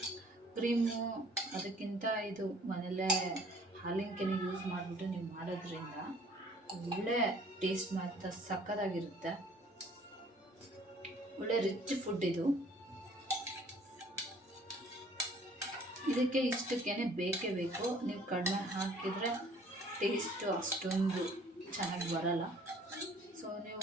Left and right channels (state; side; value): normal; both; correlation 0.56